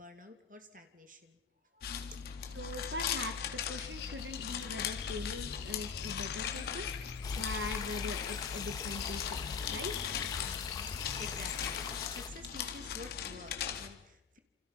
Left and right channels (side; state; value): right; quieter; 6.0 dB